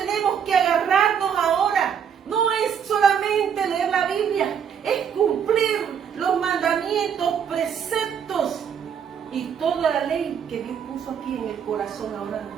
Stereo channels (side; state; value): left; quieter; 7.8 dB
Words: que agarrarnos ahora. No es solamente leer la Biblia, es cumplir los mandamientos, preceptos y toda la ley que Dios puso aquí en el corazón ahora